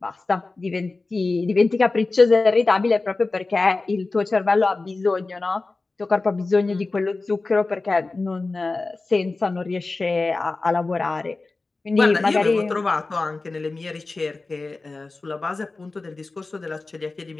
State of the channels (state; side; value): quieter; right; 3.5 dB